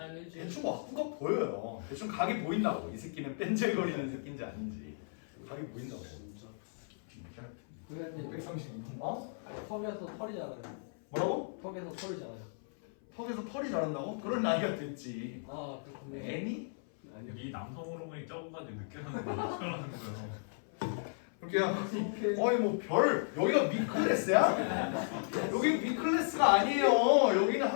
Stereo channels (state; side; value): silent; right; 54 dB below the other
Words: 일주일. 대충 학구가 보여요. 대충 각이 보인다고. 이 새끼는 뺀질거리는 새끼인지 아닌지 각이 보인다고. 진짜. 진짜. 선생님 132분. 어? 턱에서 털이 자라요. 뭐라고? 턱에서 털이 자라요. 턱에서 털이 자란다고? 그런 나이가 됐지. 아 그렇군요. 애니? 아니요. 이 남성 호르몬이 적은까지 느껴하는 거 어쩌라는 거예요. 그렇게요. 어이 뭐 별 여기가 미클래스야? 여기 미클래스가 아니에요. 여기는